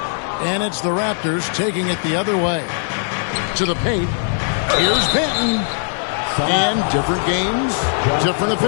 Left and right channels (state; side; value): silent; right; digital silence